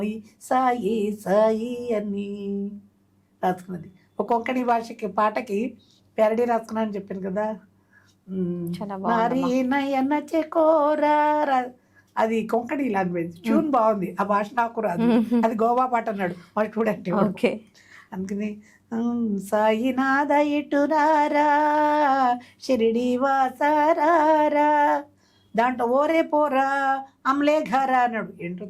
సాయి సాయి అని రాసుకున్నది. ఒక కొంకణి భాషకి పాటకి ప్యారడీ రాసుకున్నాను చెప్పాను కదా. నారీ నయన చెకోరా, అది కొంకణి లాంగ్వేజ్, ట్యూన్ బాగుంది. ఆ భాష నాకు రాదు, అది గోవా పాట అన్నాడు మా స్టూడెంట్. ఓకే, అందుకని సాయినాథ ఇటురారా షిరిడి వాసారారా, దాంట్లో ఓరే పోరా అమలే ఘరా అన్నాడు. ఏంటో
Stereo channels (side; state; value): both; identical; correlation 1.00